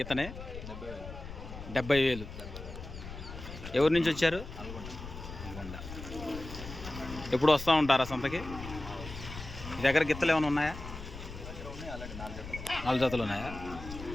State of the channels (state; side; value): noise; left; rumble, 11 dB below the sound